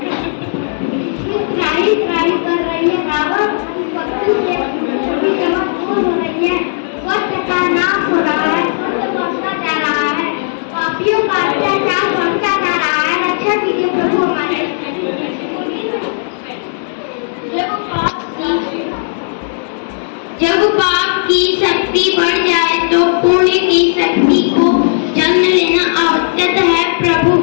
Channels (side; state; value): right; silent; digital silence